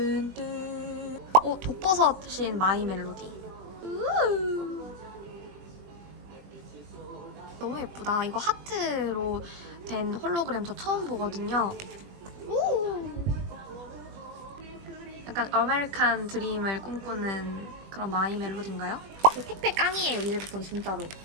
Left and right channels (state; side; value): late; left; 20 ms